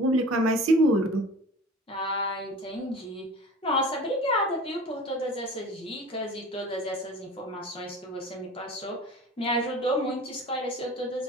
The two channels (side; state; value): both; normal; correlation 0.40